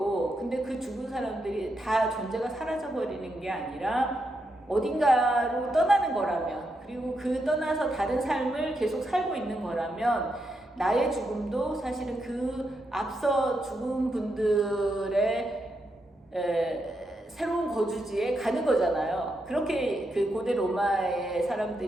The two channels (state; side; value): normal; both; correlation 0.83